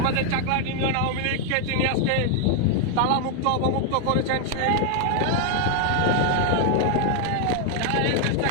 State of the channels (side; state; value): both; different; correlation 0.00